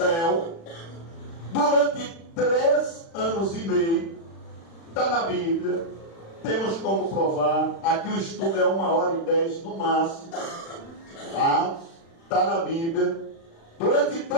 durante 3 anos e meio, está na Bíblia, temos como provar. Aqui o estudo é 1h10 no máximo, tá? Está na Bíblia. Durante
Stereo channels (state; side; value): late; right; 36 ms